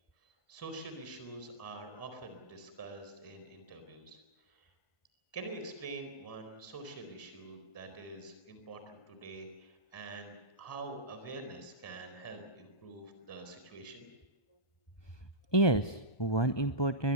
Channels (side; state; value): right; late; 1.2 ms